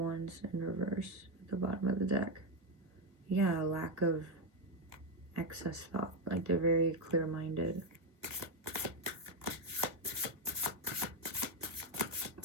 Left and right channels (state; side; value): late; left; 1.3 ms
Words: in reverse at the bottom of the deck. Yeah, a lack of excess thought. Like they're very clear-minded.